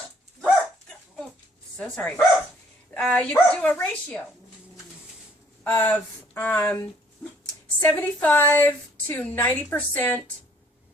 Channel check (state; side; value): normal; both; correlation 0.61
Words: Oh, so sorry. You could do a ratio of 75 to 90%